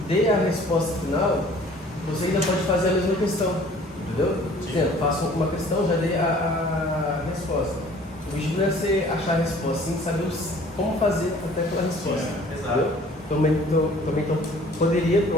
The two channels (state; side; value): normal; both; correlation 0.52